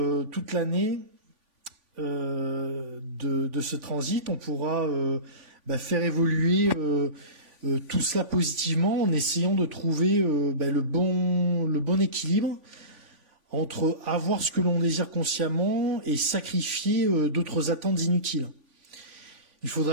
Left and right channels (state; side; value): late; left; 3.5 ms